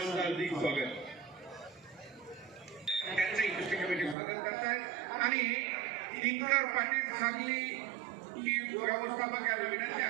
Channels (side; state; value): left; drops out; at 4.2 s